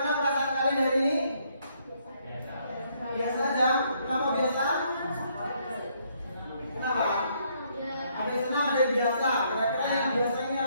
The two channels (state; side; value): inverted; both; correlation -0.70